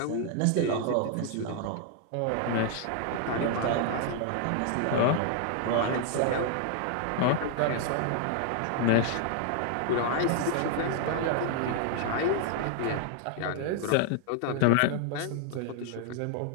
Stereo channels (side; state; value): both; different; correlation 0.00